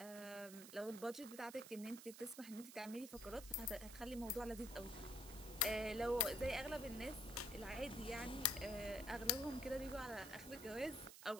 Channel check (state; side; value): noise; right; hiss, 13 dB below the sound